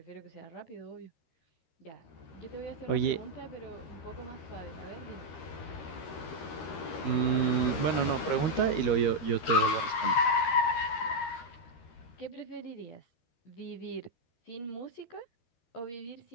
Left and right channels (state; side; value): late; right; 13 ms